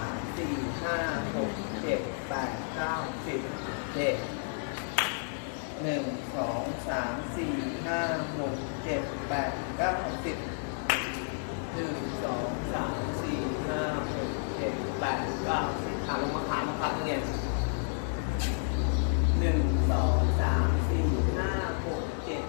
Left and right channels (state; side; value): silent; right; digital silence